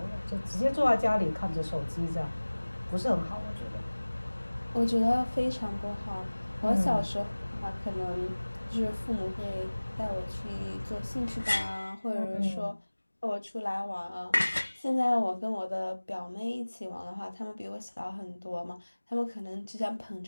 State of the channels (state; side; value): inverted; both; correlation -1.00